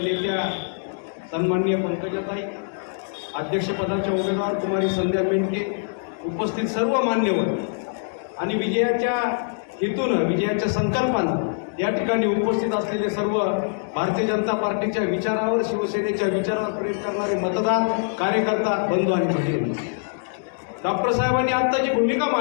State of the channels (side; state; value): right; silent; digital silence